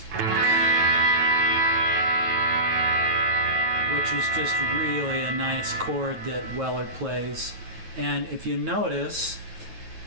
which is just really a nice chord that Weller plays. And if you notice,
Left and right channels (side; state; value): left; late; 9.2 ms